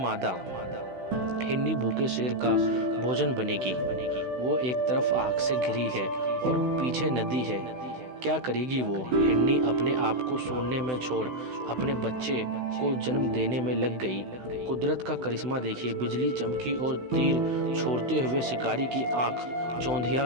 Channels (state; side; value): late; left; 16 ms